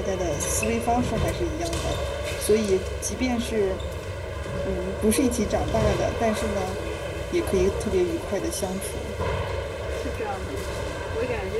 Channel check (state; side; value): identical; both; correlation 1.00